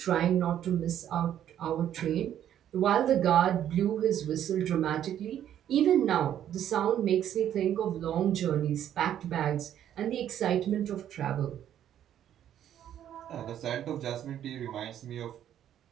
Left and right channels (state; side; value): quieter; left; 10.6 dB